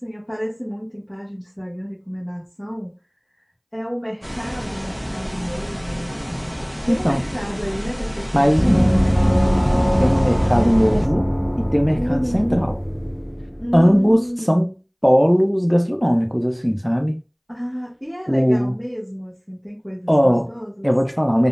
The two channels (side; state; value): both; identical; correlation 1.00